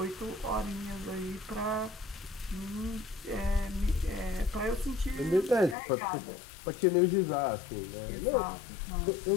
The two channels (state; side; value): drops out; right; at 5.8 s